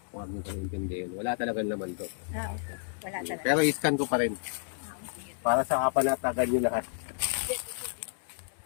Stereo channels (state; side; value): silent; right; 57 dB below the other